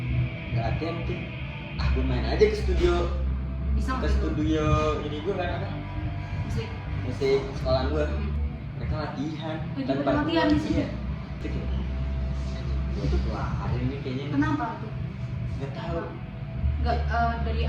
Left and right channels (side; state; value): both; identical; correlation 1.00